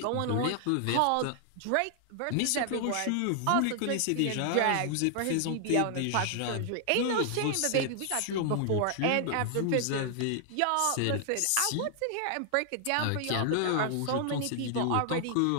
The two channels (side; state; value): both; different; correlation 0.00